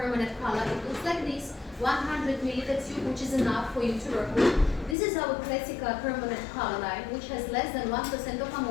color. It looks like this, 100 milliliter tube, which is enough for you to work with. This is our classic permanent color line, which has less than 1% of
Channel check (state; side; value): drops out; right; at 5.0 s